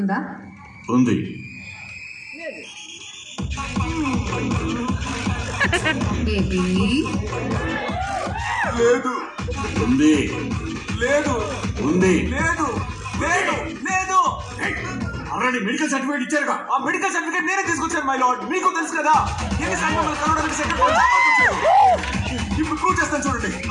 ఉంది. బేబీ లేదు. ఉంది. లేదు. ఉంది. లేదు. లేదు. లేదు. ఆల్రెడీ మెడికల్ సర్టిఫికేట్ ఇచ్చారుగా. ఆ మెడికల్ సర్టిఫికేట్ నేనే తీసుకొచ్చాను మై లార్డ్. మీకు తెలుసు కదా ఎన్నిసార్లు మమ్మల్ని కలవడానికి సెక్రటరీ ఇప్పుడు ప్రూవ్ చేస్తాను చూడండి.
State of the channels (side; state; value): both; identical; correlation 1.00